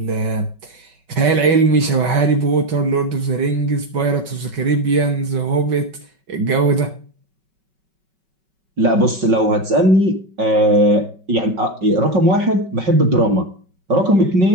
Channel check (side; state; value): left; late; 5.3 ms